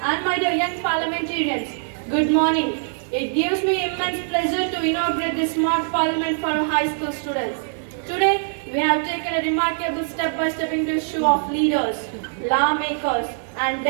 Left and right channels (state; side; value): silent; left; digital silence